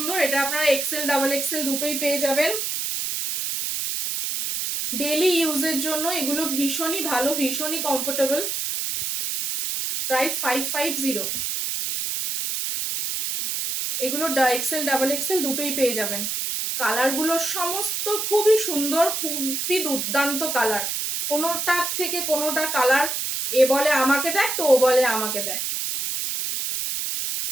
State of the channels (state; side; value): noise; right; hiss, 2 dB below the sound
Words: এটা আপনারা এক্সেল ডাবল এক্সেল দুটোই পেয়ে যাবেন। ডেলি ইউজের জন্য এগুলো ভীষণই ভালো, ভীষণই কমফোর্টেবল। প্রাইস 550। এগুলো এক্সেল ডাবল এক্সেল দুটোই পেয়ে যাবেন। কালারগুলো সমস্ত খুবই সুন্দর, খুবই দুর্দান্ত কালার, কোনোটার থেকে কোনোটা কালার এ বলে আমাকে দেখ তো ও বলে আমাকে দেখ।